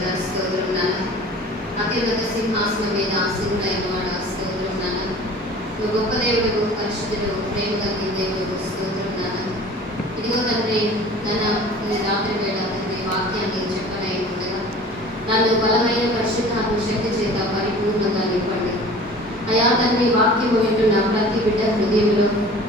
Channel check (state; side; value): normal; both; correlation 0.44